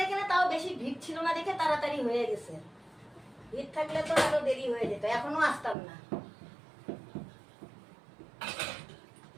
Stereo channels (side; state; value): left; drops out; at 5.8 s